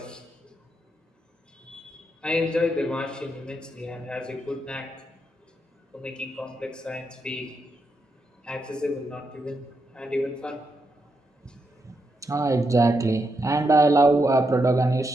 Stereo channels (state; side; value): normal; both; correlation 0.83